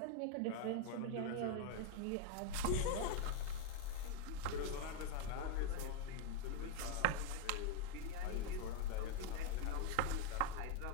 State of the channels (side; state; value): both; different; correlation 0.01